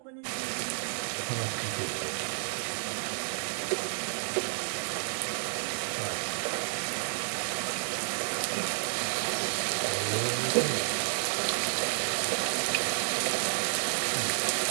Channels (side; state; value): left; silent; digital silence